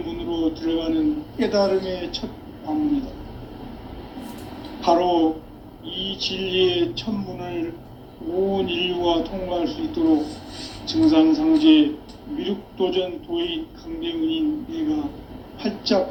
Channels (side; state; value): both; identical; correlation 1.00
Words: 들어가는 깨달음의 첫 방문이다. 바로 이 진리의 첫 문을 온 인류가 통과할 수 있도록 증산상제 미륵도전 도인 강대훈인 내가